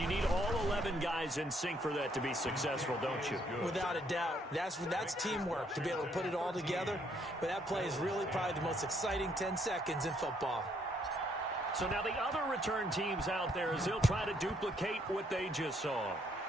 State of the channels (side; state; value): both; normal; correlation 0.69